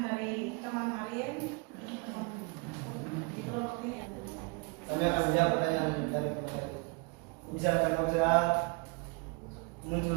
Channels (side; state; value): left; quieter; 30.9 dB